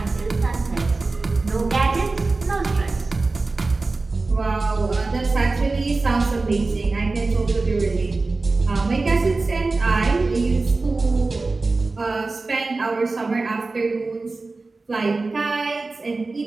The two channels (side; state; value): left; quieter; 3.6 dB